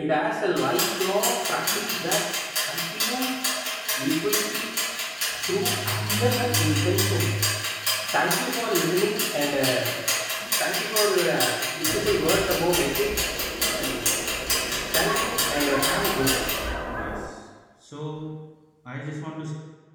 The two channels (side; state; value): both; identical; correlation 1.00